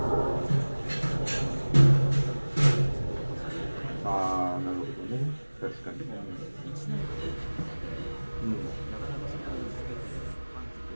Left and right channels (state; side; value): inverted; both; correlation -1.00